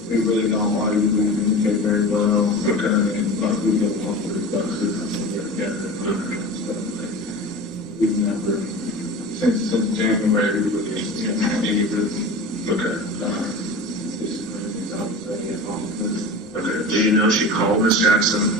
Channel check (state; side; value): normal; both; correlation 0.33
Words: we really don't argue. We communicate very well. Okay. And like we get along with stuff together. We've never, since January, we really haven't had any really. Okay. Okay. Do you know she called Miss Jackson?